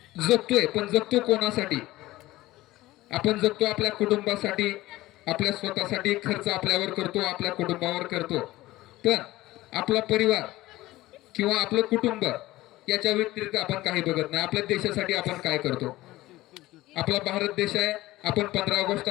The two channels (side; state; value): right; quieter; 17.4 dB